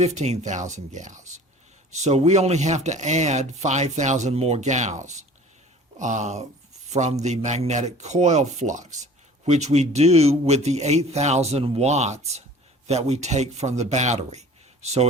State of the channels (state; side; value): normal; both; correlation 0.46